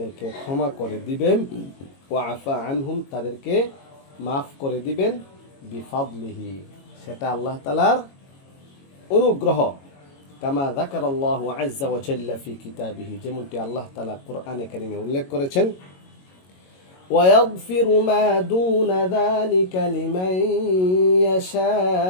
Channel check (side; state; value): right; late; 22 ms